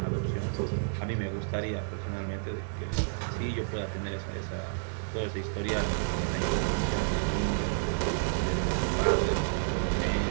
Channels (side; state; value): left; silent; digital silence